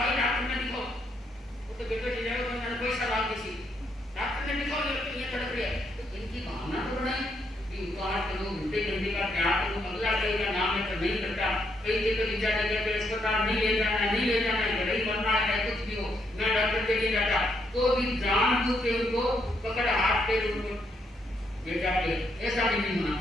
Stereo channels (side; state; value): both; normal; correlation 0.76